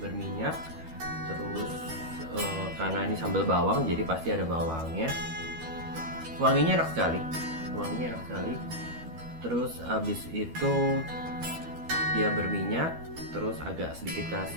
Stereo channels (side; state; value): left; late; 12 ms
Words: Terus karena ini sambal bawang jadi pasti ada bawangnya. Wanginya enak sekali. Terus habis itu dia berminyak, terus agak sedikit